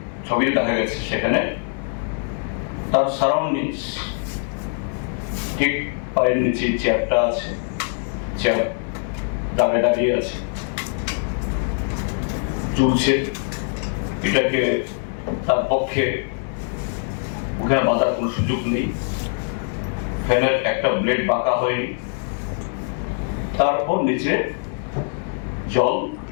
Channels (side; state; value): right; silent; 59 dB below the other